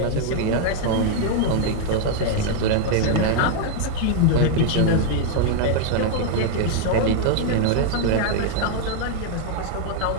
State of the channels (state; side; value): different; both; correlation 0.00